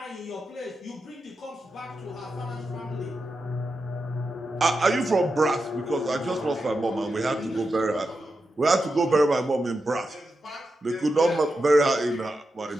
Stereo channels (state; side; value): normal; both; correlation 0.88